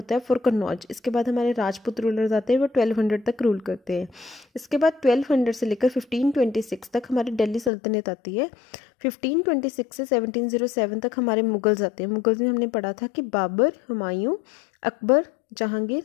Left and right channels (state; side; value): drops out; right; at 7.7 s